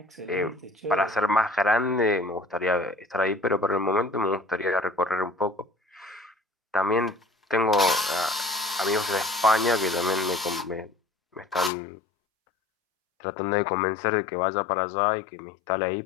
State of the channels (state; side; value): drops out; right; at 11.7 s